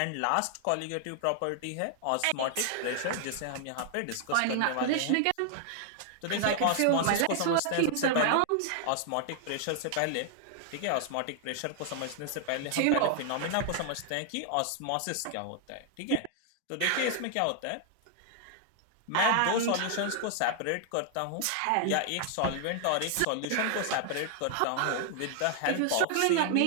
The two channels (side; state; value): both; different; correlation 0.00